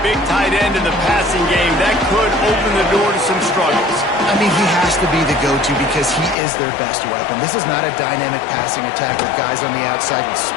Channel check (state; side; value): drops out; right; at 6.4 s